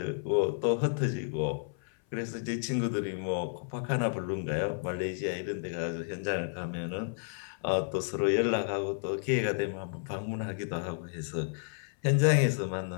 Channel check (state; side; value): silent; right; 57 dB below the other